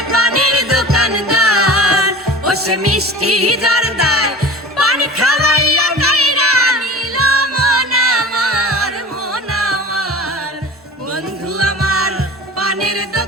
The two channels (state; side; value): normal; both; correlation 0.38